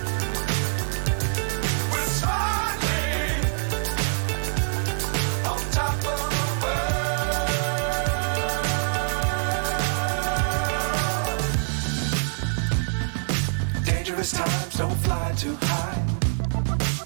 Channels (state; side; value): silent; left; digital silence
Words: Times don't fly too high.